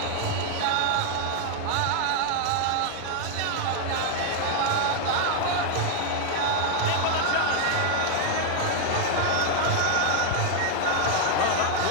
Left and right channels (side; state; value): both; different; correlation 0.00